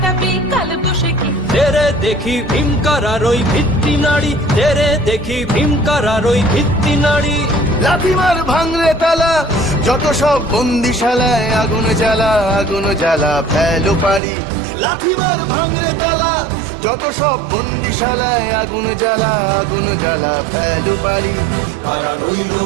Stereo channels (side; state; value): left; drops out; at 14.2 s